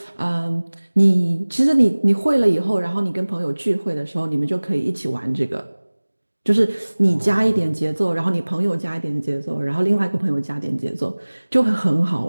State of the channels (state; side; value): inverted; both; correlation -1.00